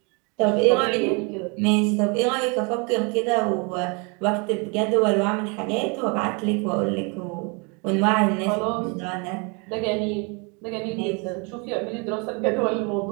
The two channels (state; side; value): quieter; left; 32.3 dB